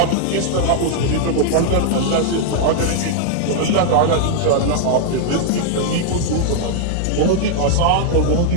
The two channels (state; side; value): different; both; correlation -0.01